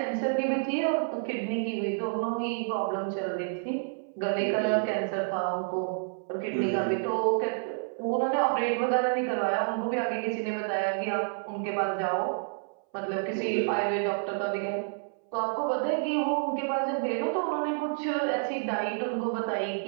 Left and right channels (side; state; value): left; silent; 58 dB below the other